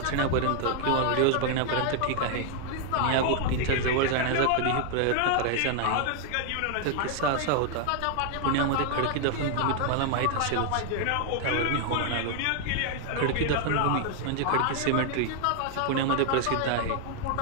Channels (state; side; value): different; both; correlation 0.00